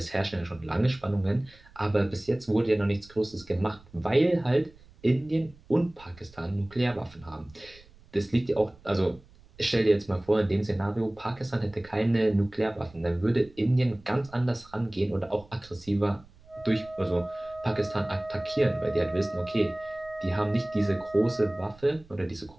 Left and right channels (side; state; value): right; noise; rumble, 25 dB below the sound